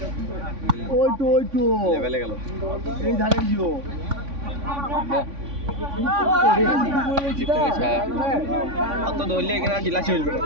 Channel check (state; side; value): late; left; 3.5 ms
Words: ওই তো লেভেলে গেল এই ধারে জিও অত ধরলে এখানে জেলা চলবে